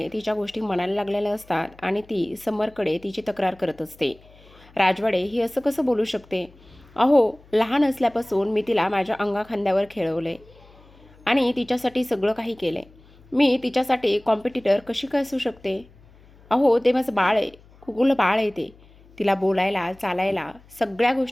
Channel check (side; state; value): left; noise; hum, 26 dB below the sound